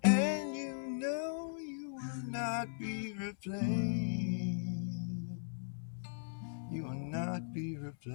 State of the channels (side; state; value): right; silent; 52 dB below the other